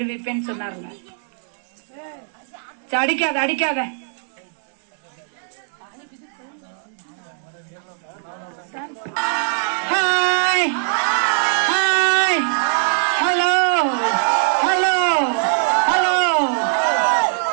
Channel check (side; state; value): left; silent; digital silence